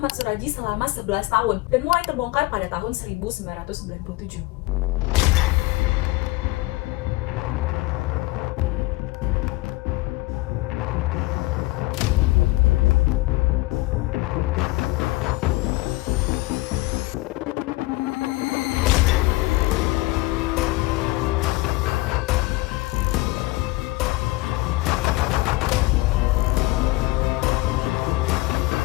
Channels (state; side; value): quieter; right; 20.7 dB